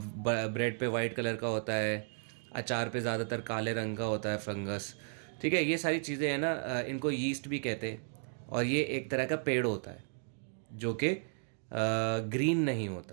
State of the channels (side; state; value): left; silent; 55 dB below the other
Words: पे वाइट कलर का होता है, अचार पे ज़्यादातर काले रंग का होता है फंगस। ठीक है, ये सारी चीज़ें हैं ना, इनको यीस्ट भी कहते हैं। और ये एक तरह का पेड़ होता है जो कि ग्रीन नहीं